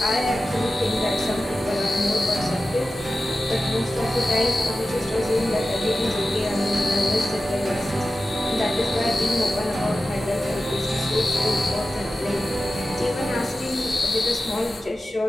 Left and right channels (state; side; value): normal; both; correlation 0.94